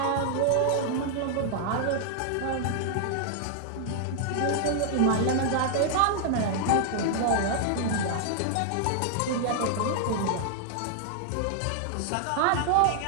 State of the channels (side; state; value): both; different; correlation 0.00